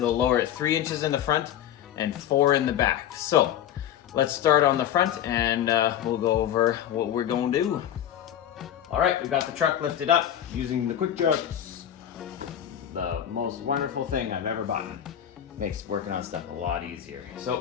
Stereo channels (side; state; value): right; quieter; 10.7 dB